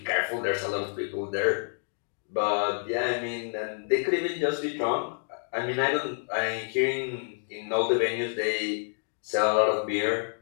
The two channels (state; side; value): silent; right; digital silence